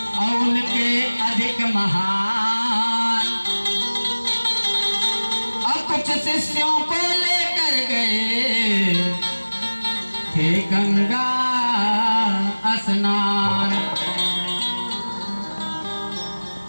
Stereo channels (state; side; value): inverted; both; correlation -1.00